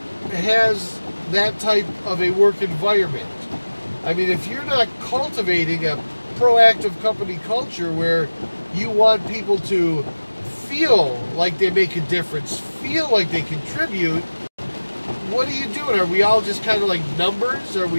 has that type of a work environment. I mean, if you're not cultivating a proactive company culture where you want people to feel like they make a difference, feel like they contribute, what are you doing? Are we all just kind of like numbers? Are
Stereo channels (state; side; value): inverted; both; correlation -1.00